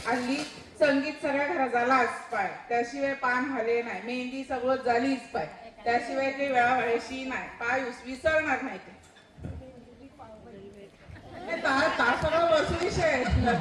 हल्ली संगीत सगळ्या घरात झालाच पाय त्याशिवाय पान हले नाही मेहंदी सगळं झालीच पाय त्याशिवाय काही वेळा व्हायची नाही पाय विसरणार नाही ते सगळं वस्तू विषय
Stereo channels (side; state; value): both; identical; correlation 1.00